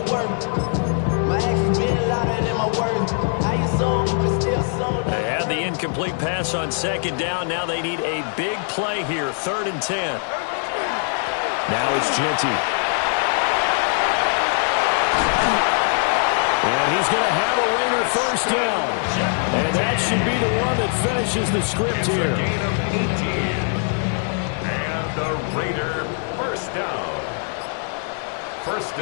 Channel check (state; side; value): silent; right; 55 dB below the other